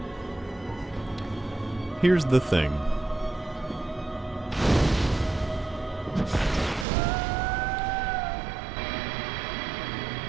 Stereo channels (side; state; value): left; drops out; at 6.9 s